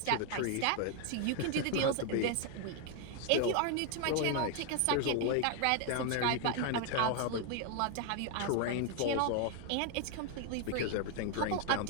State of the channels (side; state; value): both; different; correlation 0.01